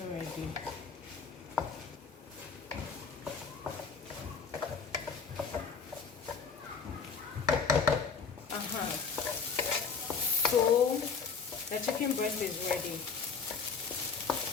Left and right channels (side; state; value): right; quieter; 5.6 dB